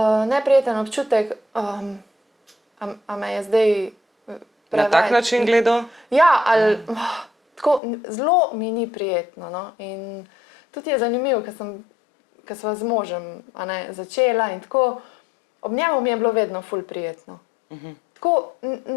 neprijeten občutek, a me je zdaj Na tak način gledal? Ja, ali tako, zelo mi ni prijetno. No? In tudi je zanimivo, ker sva z možem začela in tako, ob njemu mi je bilo vedno ful prijetno. Tako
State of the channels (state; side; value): drops out; right; at 7.8 s